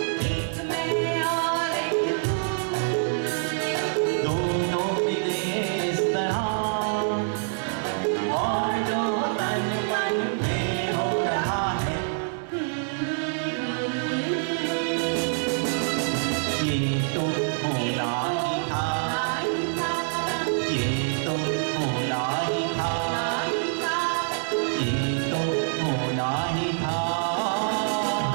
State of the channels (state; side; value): silent; left; digital silence